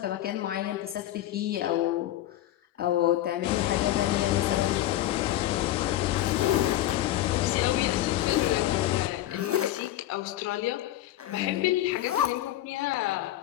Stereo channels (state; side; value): quieter; right; 14.1 dB